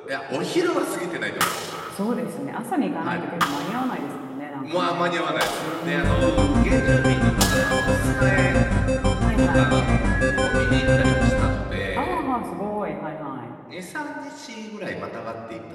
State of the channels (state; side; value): identical; both; correlation 1.00